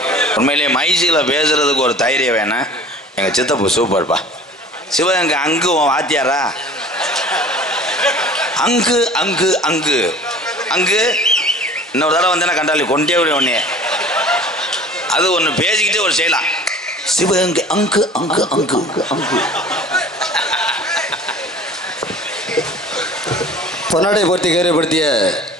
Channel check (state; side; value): normal; both; correlation 0.45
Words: உண்மையிலேயே மைசியில் பேசுறதுக்கு ஒரு தைரியம் வேணும். எங்கள் சித்தப்பு சூப்பர்ப்பா. சிவகங்கை அங்கு வாத்தியாரா? அங்கு அங்கு அங்கு அங்கு இன்னொரு தடவை வந்தேன்னா கண்டாலி கொண்டே விட ஒன்னே அது ஒன்று பேசிக்கிட்டே ஒரு செய்யலாம். சிவகங்கை அங்கு அங்கு அங்கு அங்கு. பொன்னாடை போர்த்தி கௌரவப்படுத்திய